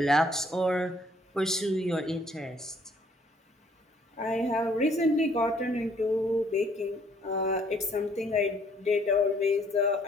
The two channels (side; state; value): both; normal; correlation 0.63